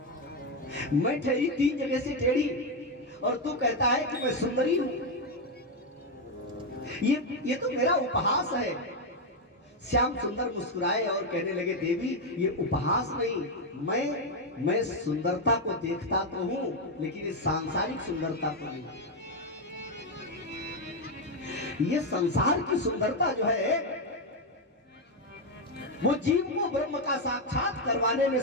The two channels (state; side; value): normal; both; correlation 0.05